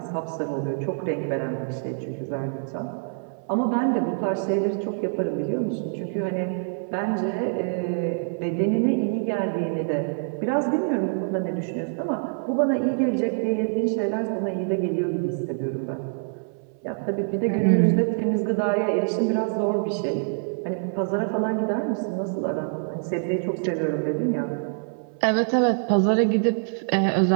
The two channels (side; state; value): left; silent; 61 dB below the other